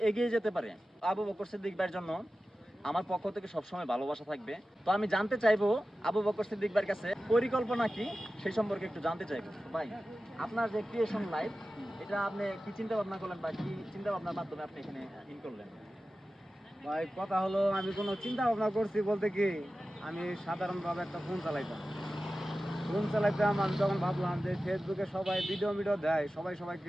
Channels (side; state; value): both; normal; correlation 0.94